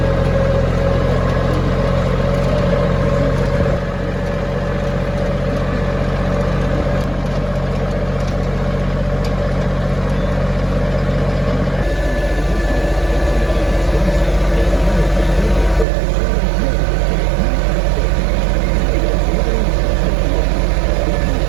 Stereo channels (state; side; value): drops out; left; at 15.9 s